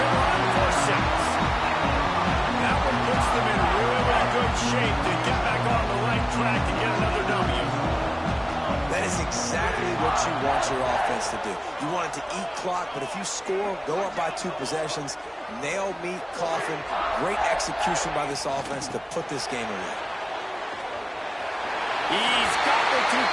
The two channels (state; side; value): identical; both; correlation 1.00